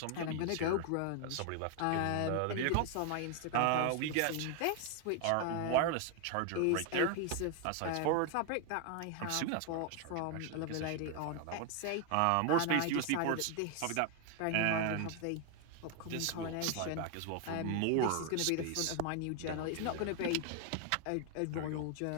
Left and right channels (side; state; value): both; different; correlation 0.01